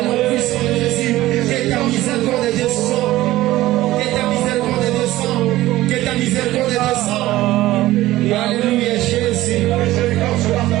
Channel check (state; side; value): quieter; left; 16.4 dB